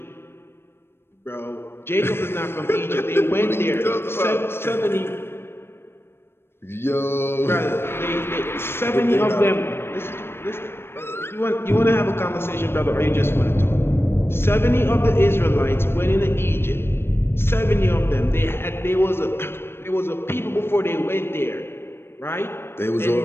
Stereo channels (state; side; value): late; right; 0.12 ms